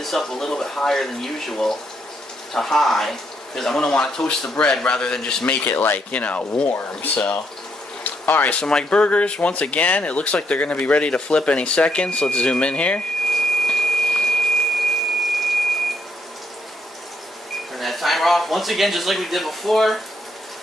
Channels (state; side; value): normal; both; correlation 0.75